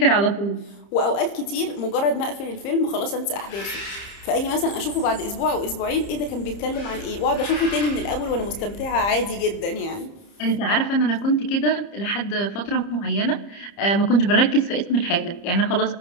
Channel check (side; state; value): right; late; 30 ms